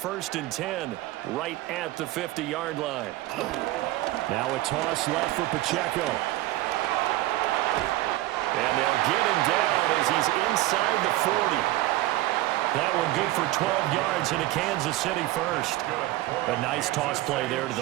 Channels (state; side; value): quieter; left; 17.0 dB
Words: and 10 right at the 50-yard line. Now a toss left for Pacheco. And they'll get him down as he's inside the 40. That one good for 12 yards into Kansas City first. A nice toss play there to